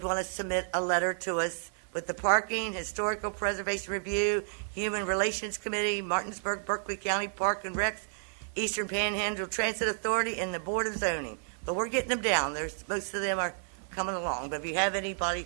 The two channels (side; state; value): left; silent; digital silence